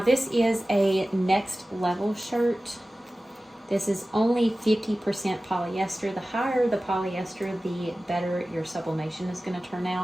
is a next level shirt. This is only 50% polyester. The higher the polyester, the better your sublimation is going to turn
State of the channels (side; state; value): both; normal; correlation 0.96